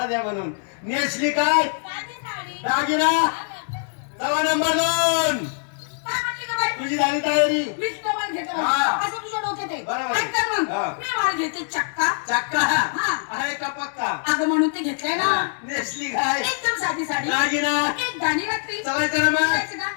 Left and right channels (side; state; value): right; silent; digital silence